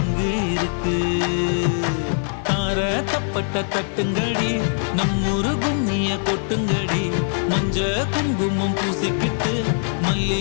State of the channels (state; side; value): silent; right; digital silence